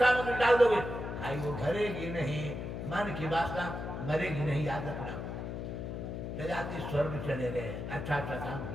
डाल दोगे, खाई वो भरेगी नहीं, मन की वासना मरेगी नहीं, याद रखना। जजाति स्वर्ग चले गए, अच्छा अच्छा काम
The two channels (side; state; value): left; noise; hum, 5 dB below the sound